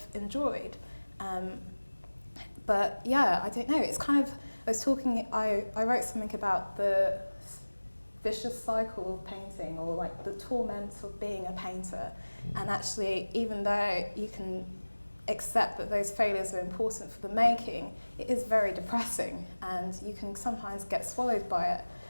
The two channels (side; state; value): both; inverted; correlation -1.00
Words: enjoyed. But yeah, I don't know, it's kind of, I wrote something about the vicious cycle of painting, or like the torment of being a painter. And actually, even though you can accept that those failures are important for the making, it is very depressing, and you can sometimes get swallowed by it.